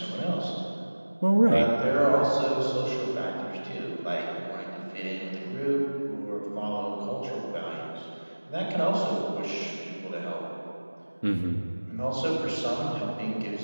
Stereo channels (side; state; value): both; inverted; correlation -1.00